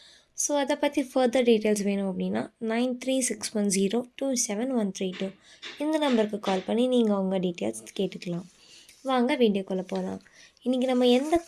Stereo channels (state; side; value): identical; both; correlation 1.00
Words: ஸோ அதை பற்றி ஃபர்தர் டீட்டெயில்ஸ் வேணும் அப்படின்னா 9361027132 இந்த நம்பருக்கு கால் பண்ணி நீங்கள் உங்கள் டீட்டெயில்ஸ் கேட்டுக்கலாம். வாங்க வீடியோக்குள்ளே போகலாம். இன்றைக்கி நம்ம எந்த